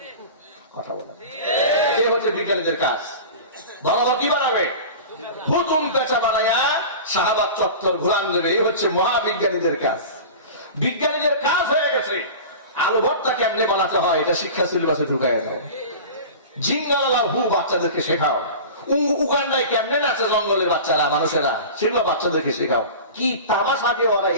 কথা বলেন, এই হচ্ছে বিজ্ঞানীদের কাজ। বড় বড় কি বানাবে? হুতুম পেঁচা বানায়া শাহবাগ চত্বর ঘুরান দেবে। এই হচ্ছে মহাবিজ্ঞানীদের কাজ। বিজ্ঞানীদের কাজ হয়ে গেছে আলু ভর্তা কেমনে বানাতে হয় এটা শিক্ষা সিলেবাসে ঢুকাই দাও। জিঙ্গালা হু বাচ্চাদেরকে শেখাও। উগান্ডায় কেমনে নাচে জঙ্গলের বাচ্চারা, মানুষেরা, সেগুলো বাচ্চাদেরকে শেখাও। কি তামাশা দিয়ে ওরা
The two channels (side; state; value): both; inverted; correlation -0.33